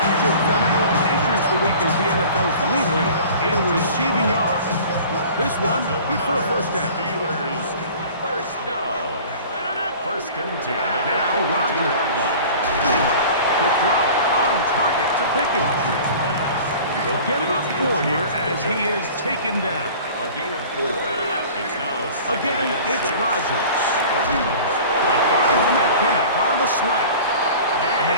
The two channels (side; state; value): both; inverted; correlation -0.43